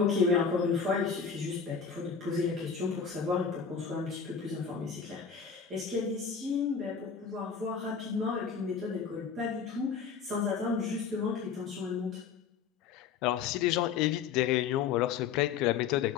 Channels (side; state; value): right; quieter; 6.4 dB